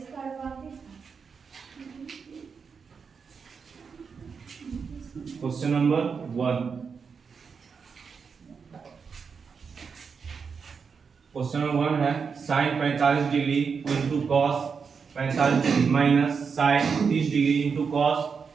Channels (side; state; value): left; quieter; 5.8 dB